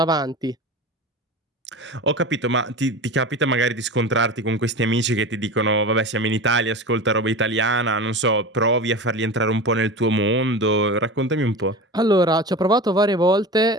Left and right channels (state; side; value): normal; both; correlation 0.30